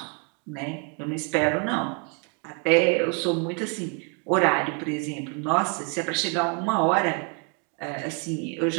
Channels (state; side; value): quieter; left; 35.9 dB